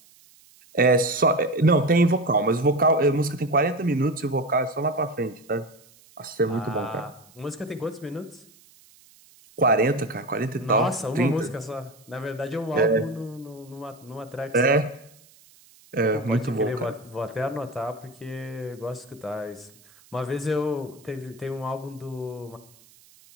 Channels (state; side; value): noise; right; hiss, 27 dB below the sound